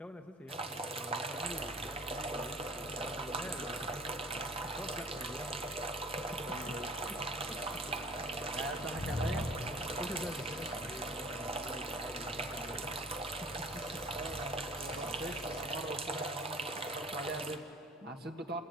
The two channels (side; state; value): both; normal; correlation 0.48